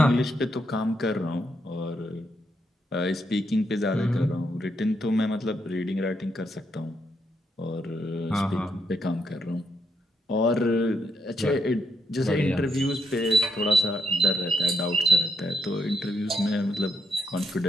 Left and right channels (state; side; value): normal; both; correlation 0.78